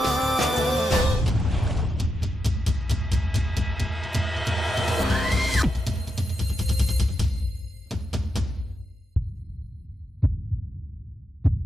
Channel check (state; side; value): normal; both; correlation 0.86